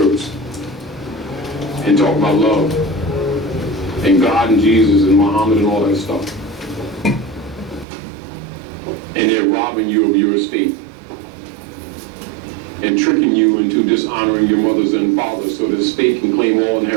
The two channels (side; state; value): left; drops out; at 7.9 s